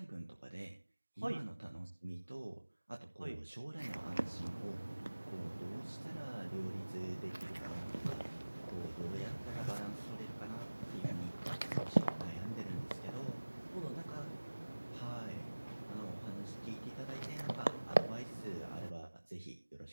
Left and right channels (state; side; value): inverted; both; correlation -1.00